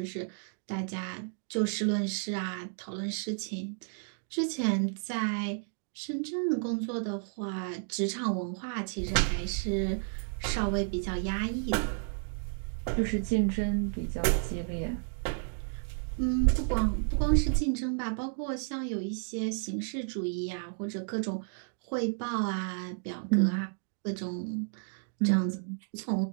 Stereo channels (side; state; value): left; silent; 56 dB below the other